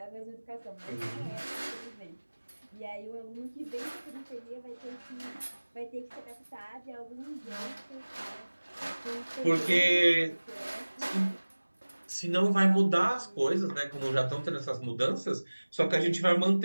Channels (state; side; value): inverted; both; correlation -1.00